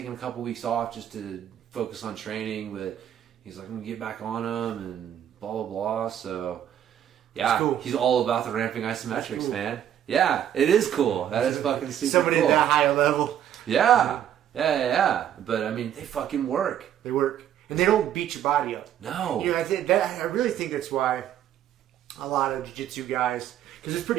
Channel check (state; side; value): quieter; left; 10.4 dB